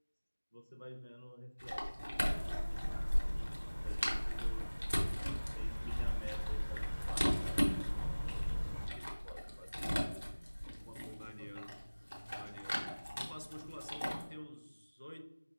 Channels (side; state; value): both; inverted; correlation -1.00